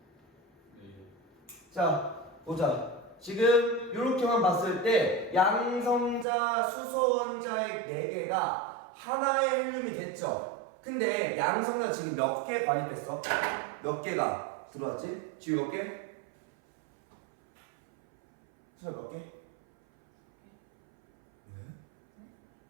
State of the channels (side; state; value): left; drops out; at 6.2 s